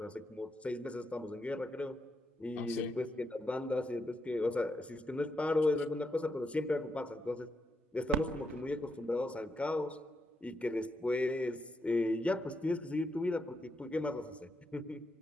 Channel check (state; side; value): normal; both; correlation 0.82